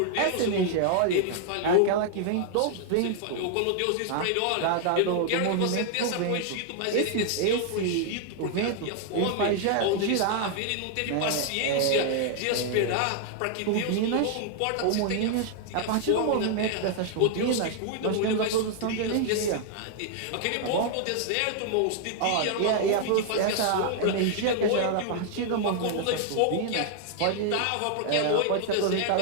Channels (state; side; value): different; both; correlation 0.00